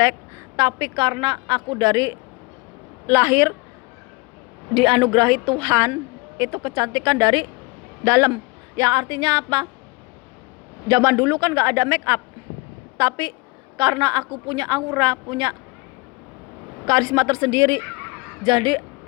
tapi karena aku dari lahir dianugerahi Tuhan itu kecantikan dari dalam. Yang artinya apa? Zaman dulu kan gak ada make up, tapi karena aku punya aura, punya karisma tersendiri, jadi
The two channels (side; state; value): right; quieter; 25.8 dB